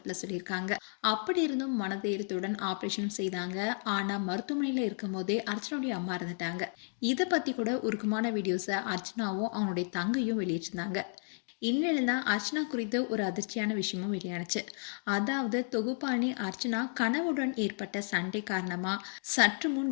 சொல்லியிருக்காங்க. அப்படி இருந்தும் மனதைரியத்துடன் ஆபரேஷன் செய்தாங்க. ஆனா மருத்துவமனையில இருக்கும் போதே அர்ச்சனாவுடைய அம்மா இருந்துட்டாங்க. இதை பத்தி கூட உருக்கமான வீடியோஸை அர்ச்சனாவும் அவங்களுடைய தங்கையும் வெளியிட்டிருந்தாங்க. இந்நிலையில தான் அர்ச்சனா குறித்து ஒரு அதிர்ச்சியான விஷயமும் வெளியானுச்சு. அதாவது தொகுப்பாளி அர்ச்சனா கணவுடன் ஏற்பட்ட சண்டை காரணமா சற்று முன்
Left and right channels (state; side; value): silent; right; 56 dB below the other